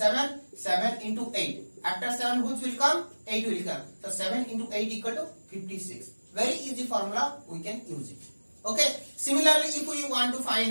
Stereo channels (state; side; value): inverted; both; correlation -1.00